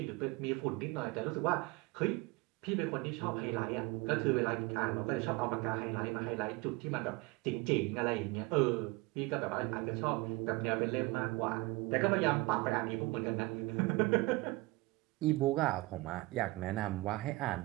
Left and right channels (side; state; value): left; quieter; 22.7 dB